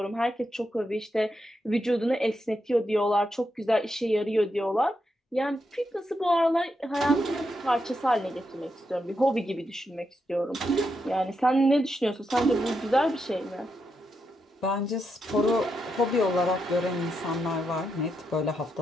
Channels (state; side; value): normal; both; correlation 0.83